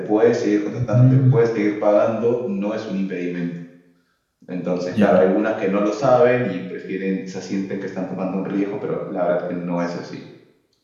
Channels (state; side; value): identical; both; correlation 1.00